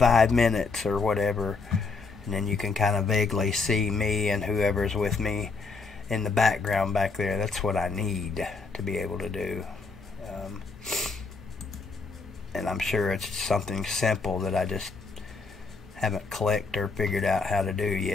minutes or whatever, and then you can kind of vaguely see me and whoever's with me in the background back there. That's what I need to be able to do. And I'm sure it's something simple that I just haven't clicked or figured out how to do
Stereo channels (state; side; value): quieter; right; 4.3 dB